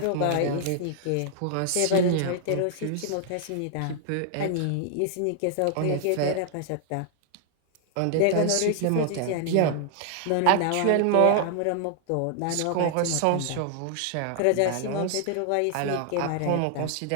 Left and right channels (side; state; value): both; different; correlation 0.00